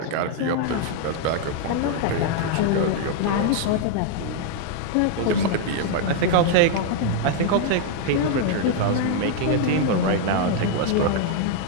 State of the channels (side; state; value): both; different; correlation 0.00